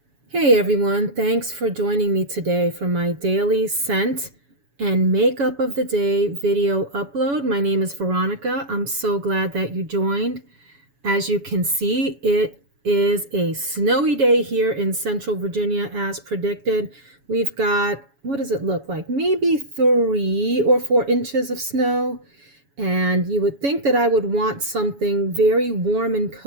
Hey everyone, thanks for joining me today for my daily scent and makeup of the day video upload. My name is Veronica. I'm so glad that you joined. As you can see, it is a snowy day here in Central Virginia as predicted. We've got, what does it look like? Maybe 3 or 4 inches of snow. And you would think that I would want something very warm and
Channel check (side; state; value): left; late; 7.1 ms